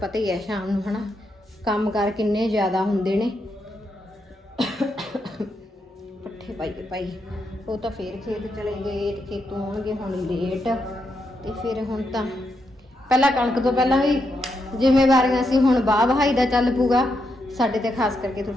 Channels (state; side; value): normal; both; correlation 0.82